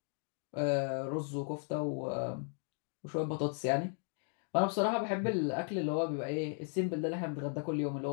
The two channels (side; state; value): right; silent; 54 dB below the other